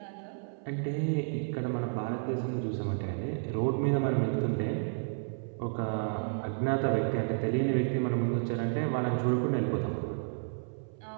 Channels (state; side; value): silent; left; 57 dB below the other